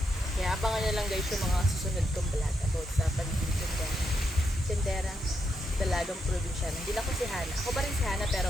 Kaya abangan nyo lang guys yung mga susunod kong vlog about sa pagiging tenderang dalagang probinsyana. Hindi lang ko si Hana. Ako pa rin si Hana, pero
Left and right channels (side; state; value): both; normal; correlation 0.82